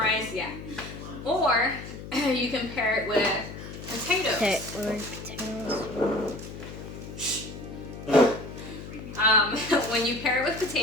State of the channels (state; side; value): noise; left; hum, 11 dB below the sound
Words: yeah. Or you can pair it with potatoes. When you pair it with